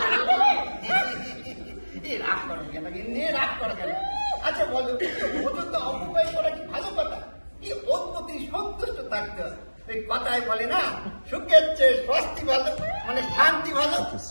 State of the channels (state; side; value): inverted; both; correlation -1.00